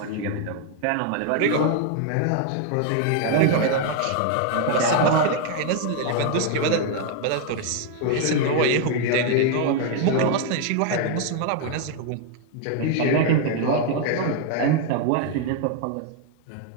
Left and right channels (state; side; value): different; both; correlation 0.00